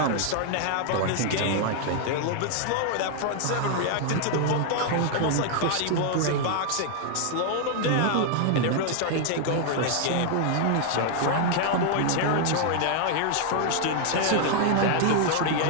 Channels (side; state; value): both; different; correlation 0.00